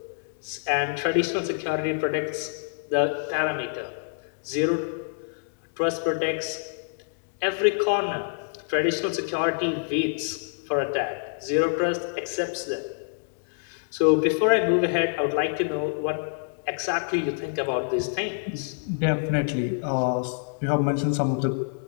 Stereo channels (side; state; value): right; silent; digital silence